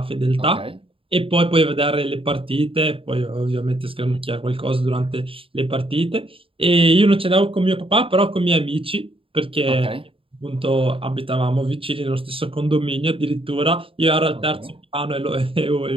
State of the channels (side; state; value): left; late; 0.26 ms